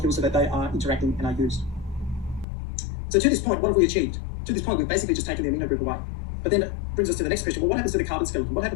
so that they are interacting and are used. So to this point, what have we achieved? To this point, we've basically just taken the amino group away. But then it brings us to the next question. Well, what happens to the carbon skeleton? What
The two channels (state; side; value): drops out; right; at 2.5 s